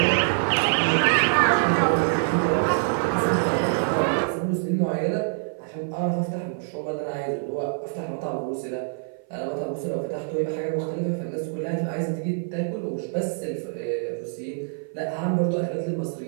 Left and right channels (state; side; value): silent; left; 55 dB below the other